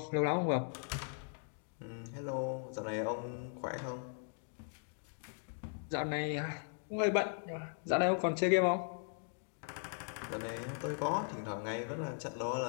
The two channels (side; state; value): right; silent; 52 dB below the other